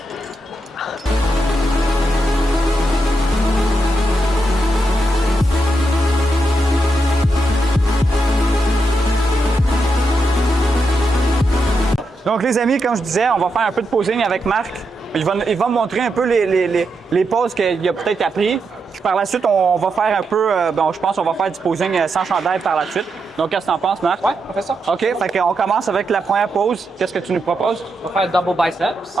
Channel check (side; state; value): both; normal; correlation 0.84